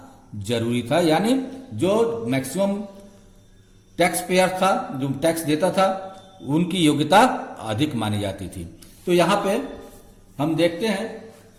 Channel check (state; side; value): identical; both; correlation 1.00